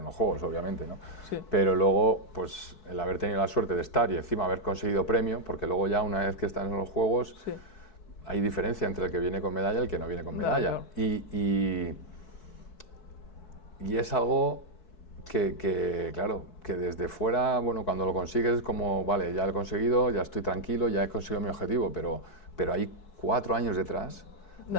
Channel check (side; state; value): right; late; 4.6 ms